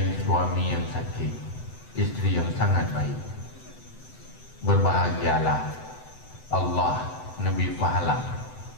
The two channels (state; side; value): late; right; 7.9 ms